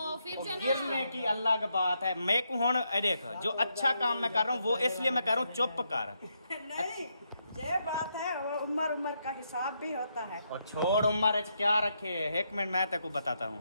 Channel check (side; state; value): both; inverted; correlation -0.80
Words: फिर जो गिरने की अल्लाह की बात है। मैं को हुन देख, जो अच्छा काम मैं कर रहा हूँ वो इसलिए मैं कर रहा हूँ, चुप कर। नहीं, ये बात है, वो उम्र का हिसाब भी होता है। और छोड़ उम्र क्या रखे, एक मिनट मैं तेको बताता हूँ।